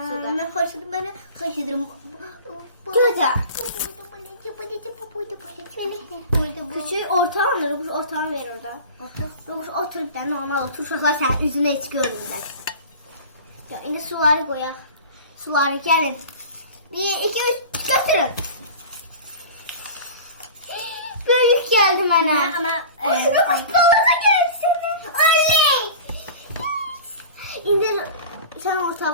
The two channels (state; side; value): inverted; both; correlation -0.37